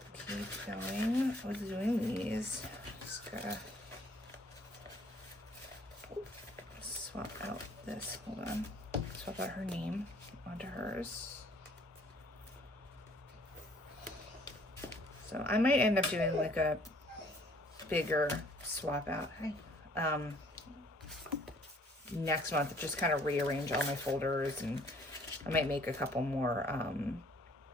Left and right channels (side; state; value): both; normal; correlation 0.59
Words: keep going with doing these. Just gotta swap out this, hold on. Swap out her name onto hers. So I might end up doing like a bigger swap out next month, just kind of rearrange all my folders, and I might make a couple more